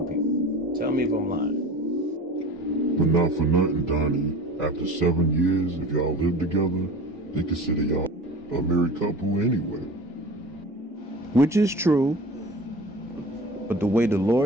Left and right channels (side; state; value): both; normal; correlation 0.37